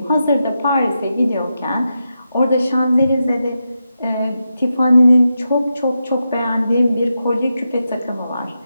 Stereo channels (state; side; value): inverted; both; correlation -0.88